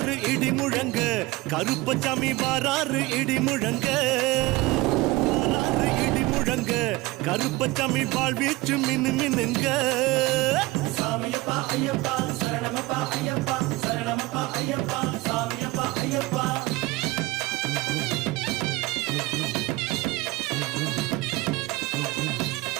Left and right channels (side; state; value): left; quieter; 20.7 dB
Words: இடி முழங்க கருப்பசாமி வாராறு இடி முழங்க வாராறு இடி முழங்க கருப்பசாமி வாழ்வீச்சு மின்னு மின்னுங்க சாமியப்பா ஐயப்பா சரணமப்பா ஐயப்பா சரணமப்பா ஐயப்பா சாமியப்பா ஐயப்பா